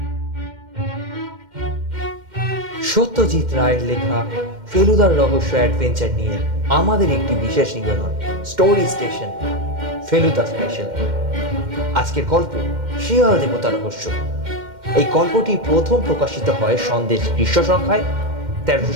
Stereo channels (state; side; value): late; left; 2.1 ms